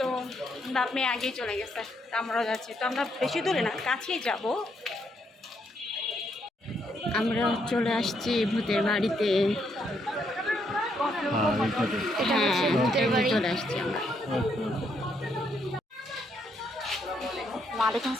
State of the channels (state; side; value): normal; both; correlation 0.75